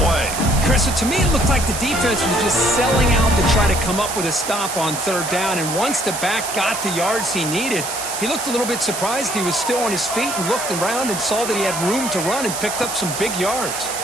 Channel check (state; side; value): noise; right; hiss, 6 dB below the sound